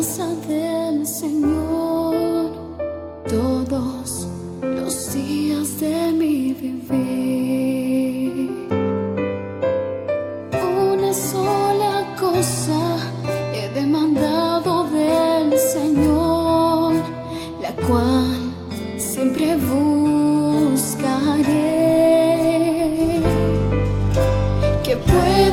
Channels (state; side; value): identical; both; correlation 1.00